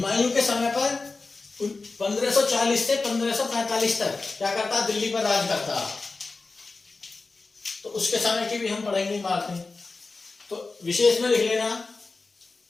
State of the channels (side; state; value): right; quieter; 3.8 dB